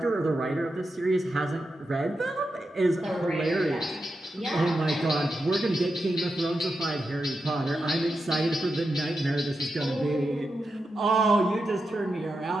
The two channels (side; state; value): both; normal; correlation 0.88